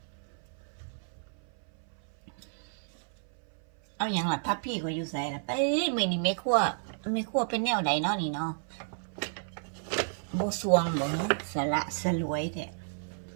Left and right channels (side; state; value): left; silent; 57 dB below the other